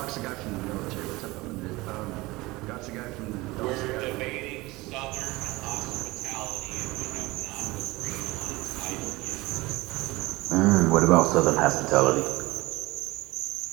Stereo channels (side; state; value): left; quieter; 21.2 dB